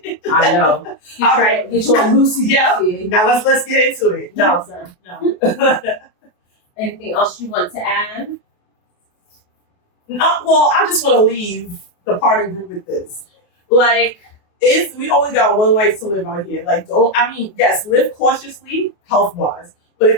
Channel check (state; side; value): late; right; 28 ms